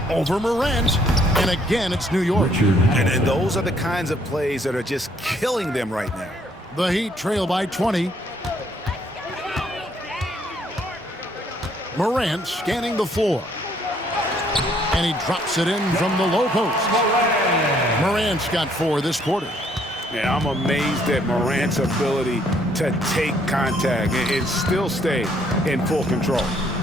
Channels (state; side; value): normal; both; correlation 0.66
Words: over Morant. And again, it's New York. And those are the kinds of plays that are just killing them right now. The Heat trail by 20. Morant scanning the floor. And he drops it in from the low post. Morant's got 4 this quarter. Yeah, I'm amazed at Morant's ability to take contact and still stay in full control.